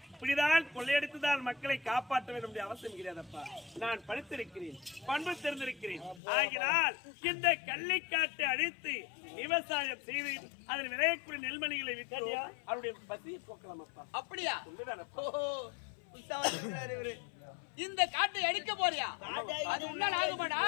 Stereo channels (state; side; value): drops out; right; at 6.2 s